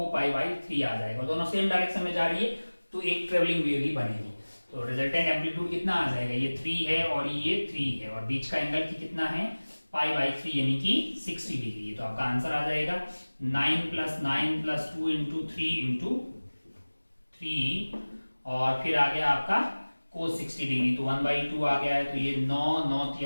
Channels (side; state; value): both; inverted; correlation -1.00